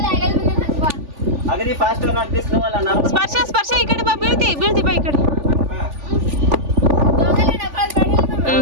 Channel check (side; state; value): left; late; 3.4 ms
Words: ಅಗದಿ ಫಾಸ್ಟ್ ಸ್ಪರ್ಶ ಈ ಕಡೆ ಬಾ ಬೀಳ್ತಿ ಬಾ ಈ ಕಡೆ